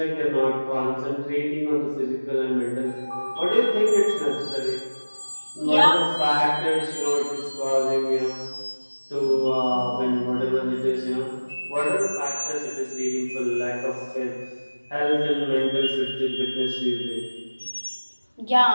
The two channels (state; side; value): inverted; both; correlation -1.00